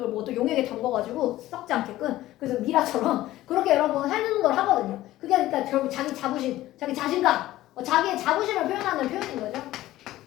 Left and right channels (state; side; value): quieter; right; 15.5 dB